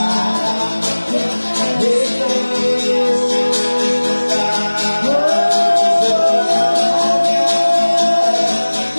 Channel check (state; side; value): inverted; both; correlation -1.00